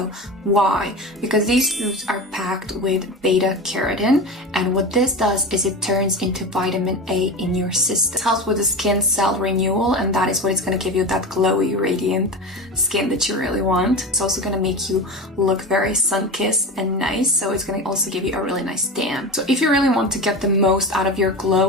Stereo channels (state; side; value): normal; both; correlation 0.26